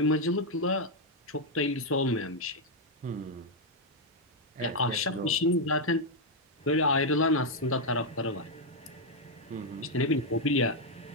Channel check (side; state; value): both; normal; correlation 0.00